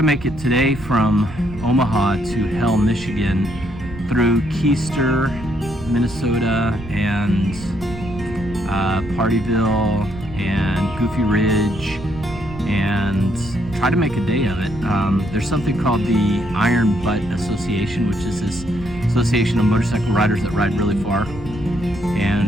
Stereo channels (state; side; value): noise; right; rumble, 14 dB below the sound